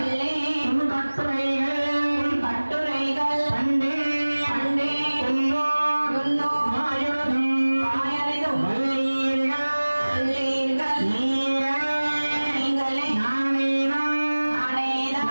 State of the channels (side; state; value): both; inverted; correlation -1.00